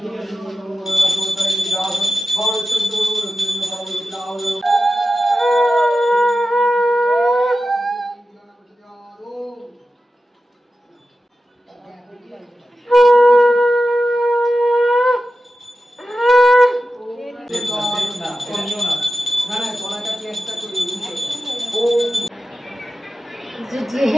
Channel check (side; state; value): both; normal; correlation 0.93